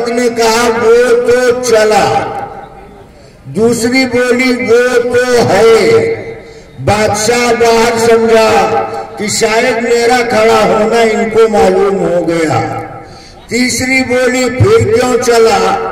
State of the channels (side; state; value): both; identical; correlation 1.00